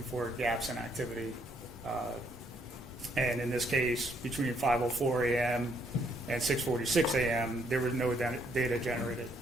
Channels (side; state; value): both; normal; correlation 0.71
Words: for gaps in activity. And in this case, between 5:04 a.m. and 6:46 a.m., there was no data generated.